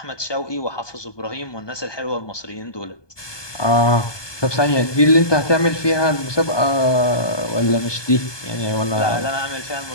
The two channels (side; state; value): right; late; 1.2 ms